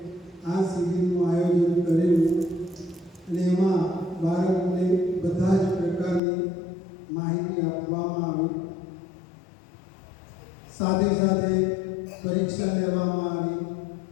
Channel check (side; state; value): right; drops out; at 6.2 s